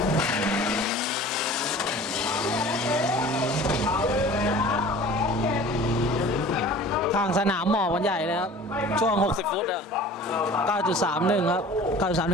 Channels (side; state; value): both; normal; correlation 0.43